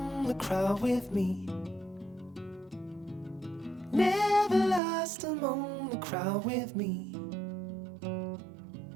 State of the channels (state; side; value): drops out; left; at 4.8 s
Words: the crowd with me. Never lost among the crowd with me.